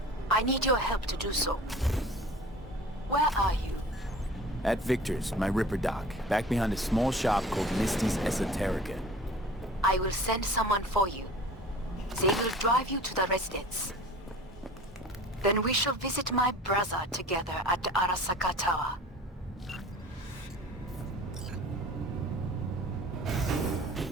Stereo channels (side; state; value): both; normal; correlation 0.43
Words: I need your help to do so. Where are you? At Victor's, my Ripper dock, back behind a small shop called Misty's Esoterica. I will send someone for you. They will drive you to the residence. Then we shall visit my brother together at the Arasaka Tower.